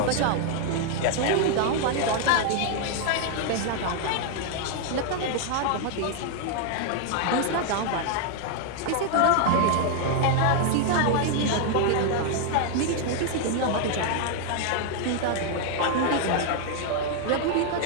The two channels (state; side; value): different; both; correlation 0.00